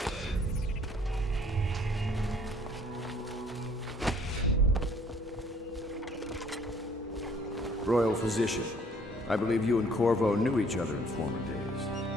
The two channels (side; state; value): both; normal; correlation 0.59